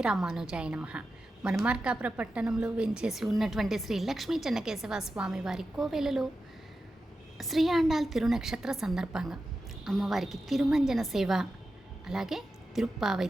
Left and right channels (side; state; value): both; normal; correlation 0.91